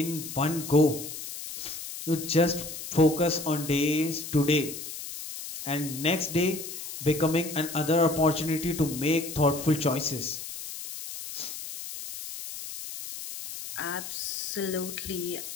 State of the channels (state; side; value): noise; left; hiss, 9 dB below the sound